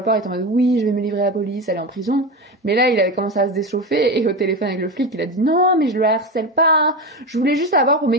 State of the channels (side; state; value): both; normal; correlation 0.20